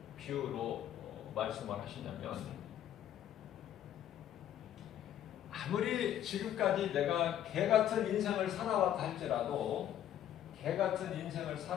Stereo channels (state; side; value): quieter; right; 11.0 dB